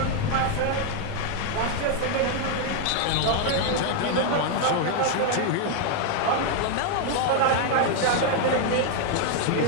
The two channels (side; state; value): both; different; correlation 0.00